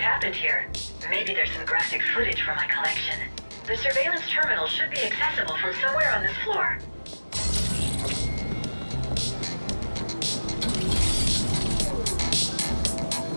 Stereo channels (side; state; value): both; inverted; correlation -1.00